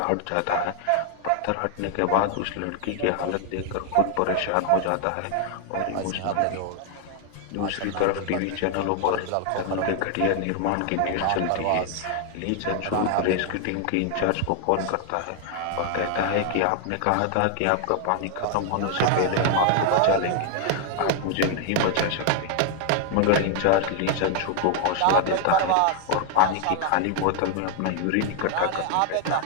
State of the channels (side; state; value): both; different; correlation 0.00